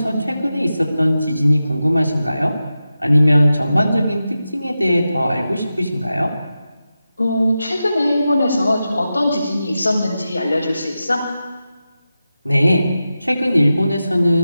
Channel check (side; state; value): both; inverted; correlation -0.92